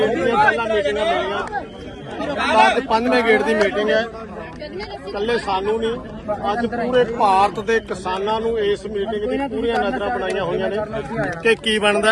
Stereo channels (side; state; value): both; identical; correlation 1.00